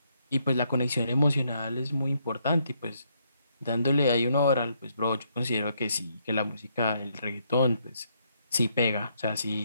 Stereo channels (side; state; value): both; inverted; correlation -0.74